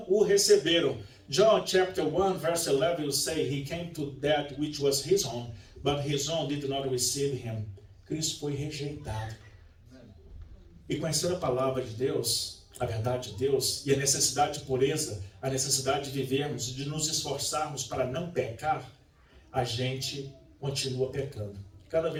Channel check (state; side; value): identical; both; correlation 1.00